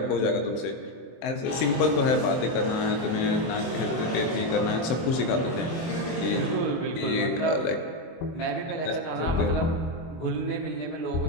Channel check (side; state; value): right; late; 24 ms